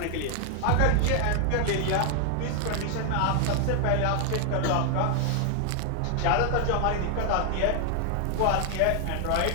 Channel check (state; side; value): different; both; correlation 0.00